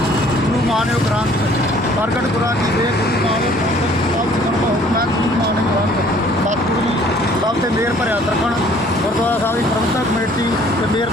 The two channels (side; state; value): both; normal; correlation 0.57